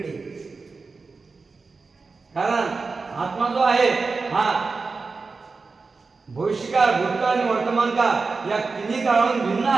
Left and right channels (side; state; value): left; quieter; 4.3 dB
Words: कारण आत्मा जो आहे हा भविष्यकाळ, भूतकाळ आणि वर्तमान काळ या तिन्ही काळाहून भिन्न